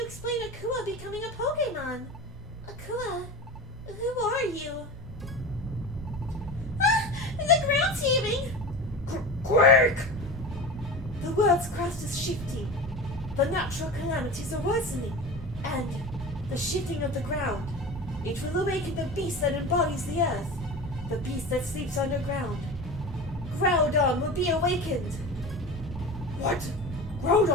explain Akua becoming a Pokemon? Akua, who are you? Ah! The ground's heaving! Quick! The world's crust is shifting. The natural calamities are worsening. And the shifting of the ground. It will awaken the beast that embodies the earth. The beast that sleeps underground. Groudon will be awakened. What?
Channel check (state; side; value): normal; both; correlation 0.30